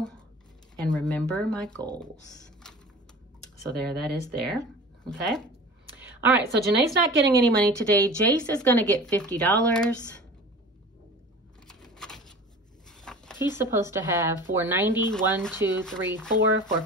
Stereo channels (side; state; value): both; normal; correlation 0.39